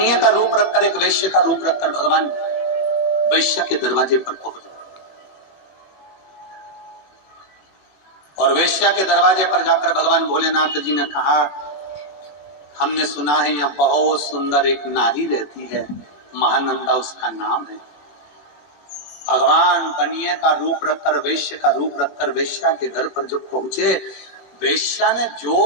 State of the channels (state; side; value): late; right; 20 ms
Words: का रूप रखकर, एक वेश्य का रूप रखकर भगवान वेश्या के दरवाजे पर पहुंच गए। और वेश्या के दरवाजे पर जाकर भगवान भोलेनाथ जी ने कहा हमने सुना है यहाँ बहुत सुंदर एक नारी रहती है, महानंदा उसका नाम है। भगवान बनिए का रूप रखकर, वेश्या का रूप रखकर वेश्या के घर पर जब पहुंचे, वेश्या ने